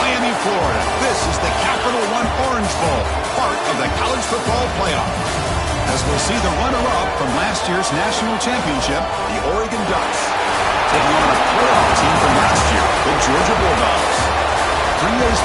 Florida. This is the Capital One Orange Bowl, part of the college football playoff. As we'll see the runner-up from last year's national championship, the Oregon Ducks, taking on a playoff team from last year, the Georgia Bulldogs. 3A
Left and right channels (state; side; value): identical; both; correlation 1.00